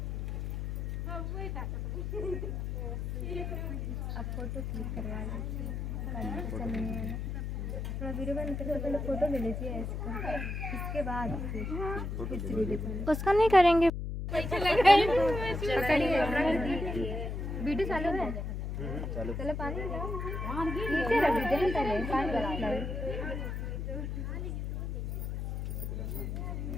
अब फोटो क्लिक करवा लीजिए। थोड़ा वीडियो बंद करके पहले फोटो ले लीजिए ऐसे करके, इसके बाद फिर उसका नहीं करेंगे। पकड़िए वीडियो चालू है। चलो पानी नीचे रख दीजिए ना पहले पानी लगाइए।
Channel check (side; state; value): left; noise; hum, 3 dB below the sound